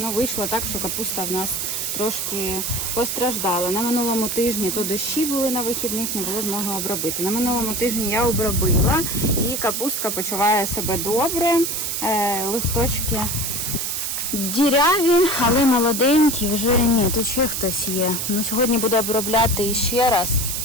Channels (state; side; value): noise; right; hiss, 2 dB below the sound